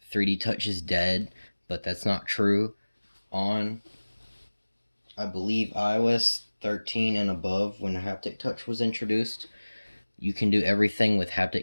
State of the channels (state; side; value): inverted; both; correlation -1.00